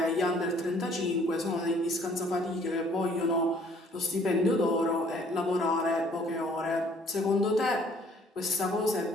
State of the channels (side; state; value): both; normal; correlation 0.59